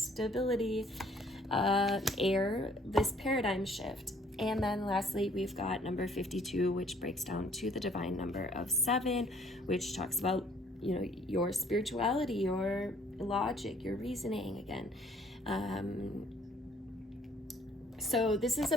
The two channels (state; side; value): normal; both; correlation 0.61